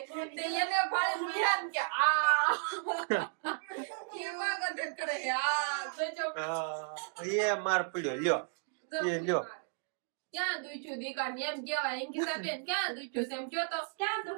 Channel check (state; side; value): silent; left; digital silence